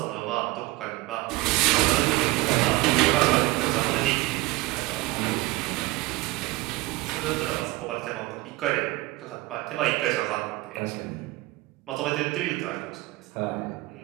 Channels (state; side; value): quieter; left; 20.4 dB